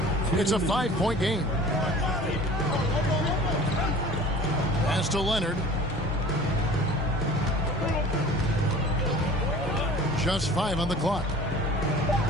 It's a 5-point game. Pass to Leonard. Just 5 on the clock.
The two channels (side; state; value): both; normal; correlation 0.44